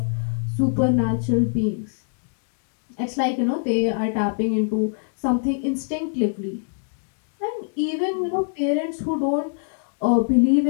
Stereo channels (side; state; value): right; silent; 61 dB below the other